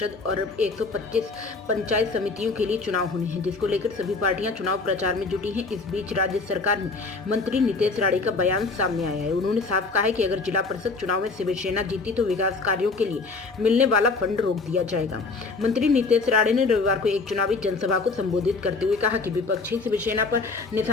और 125 पंचायत समितियों के लिए चुनाव होने हैं, जिसको लेकर सभी पार्टियां चुनाव प्रचार में जुटी हैं। इस बीच राज्य सरकार में मंत्री नितेश राणे का बयान सामने आया है। उन्होंने साफ कहा है कि अगर जिला परिषद चुनाव में शिवसेना जीती तो विकास कार्यों के लिए मिलने वाला फंड रोक दिया जाएगा। मंत्री नितेश राणे ने रविवार को एक चुनावी जनसभा को संबोधित करते हुए कहा कि विपक्षी शिवसेना पर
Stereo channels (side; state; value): right; quieter; 4.0 dB